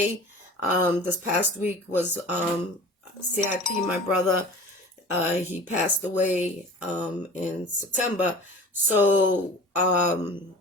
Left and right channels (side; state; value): both; normal; correlation 0.40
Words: past week was CIP, my brother. He passed away in September. So